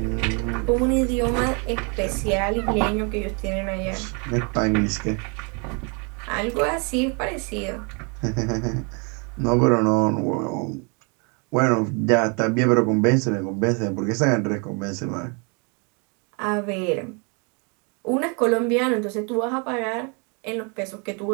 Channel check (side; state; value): left; quieter; 34.4 dB